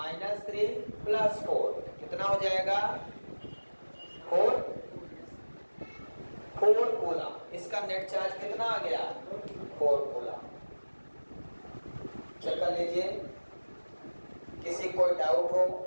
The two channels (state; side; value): inverted; both; correlation -1.00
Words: +4 कितना हो जाएगा? 4 कूलम। इसका नेट चार्ज कितना आ गया? 4 कूलम। चेक कर लीजिए, किसी कोई डाउट हो